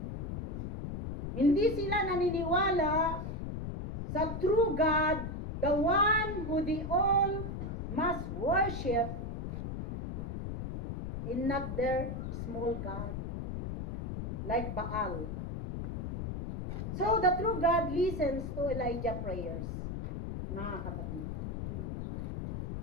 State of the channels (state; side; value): noise; left; rumble, 5 dB below the sound